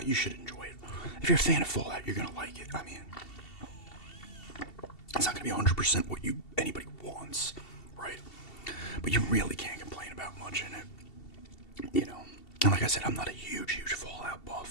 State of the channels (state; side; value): late; right; 2.7 ms